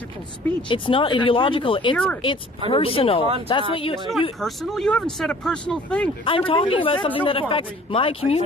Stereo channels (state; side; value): normal; both; correlation 0.51